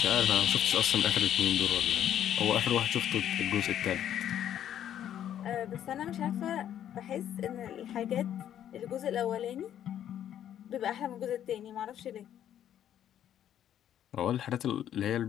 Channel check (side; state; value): right; quieter; 10.5 dB